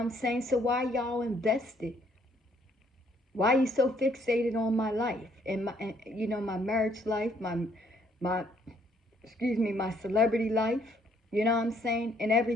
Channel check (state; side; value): normal; both; correlation 0.66